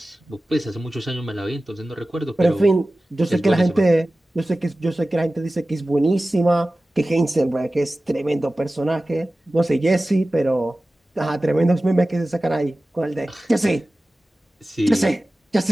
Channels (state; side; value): normal; both; correlation 0.96